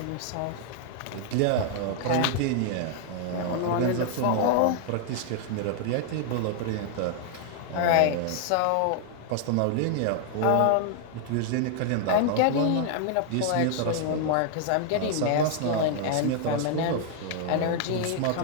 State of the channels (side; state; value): both; different; correlation 0.00